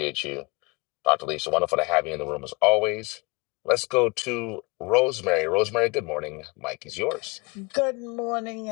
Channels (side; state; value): right; quieter; 27.5 dB